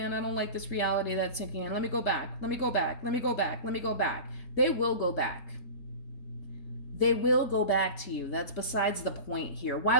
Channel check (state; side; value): late; right; 3.7 ms